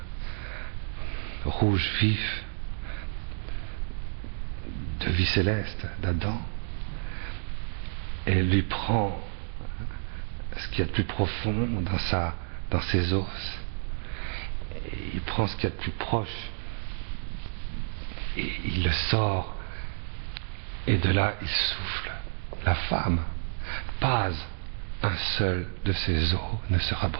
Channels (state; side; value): silent; left; digital silence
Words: rouge vif de vie céleste d'Adam et lui prend ce qu'il y a de plus profond dans ses os. Et il prend ce qu'il y a de plus proche et il le sort, et de là il souffle. La femme, pas un seul de ses os ne sera